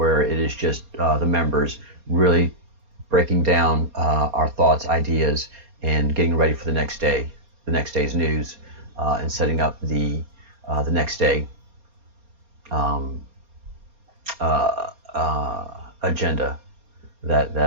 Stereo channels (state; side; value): late; left; 4.3 ms